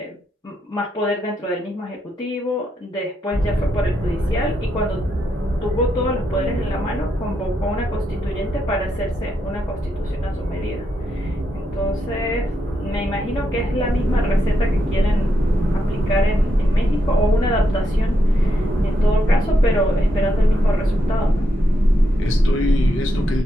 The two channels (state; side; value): normal; both; correlation 0.81